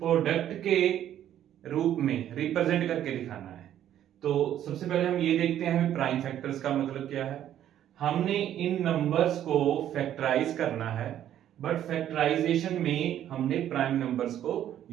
के रूप में रिप्रेजेंट करके दिखाना है। तो सबसे पहले हम ये देखते हैं प्राइम फैक्टर्स का मतलब क्या है। हमने इन नंबर्स को फैक्टराइज करना है, बट फैक्टराइजेशन में हमने प्राइम नंबर्स को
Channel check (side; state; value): left; quieter; 11.2 dB